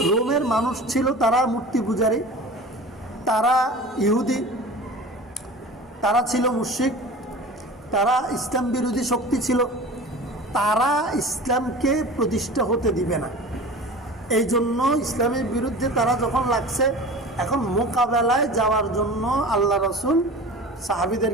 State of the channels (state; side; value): normal; both; correlation 0.37